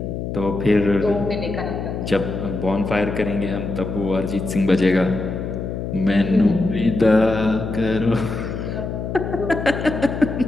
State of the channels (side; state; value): left; noise; hum, 5 dB below the sound